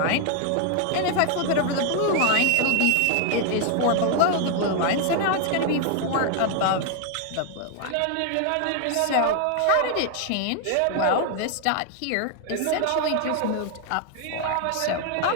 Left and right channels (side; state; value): both; different; correlation 0.00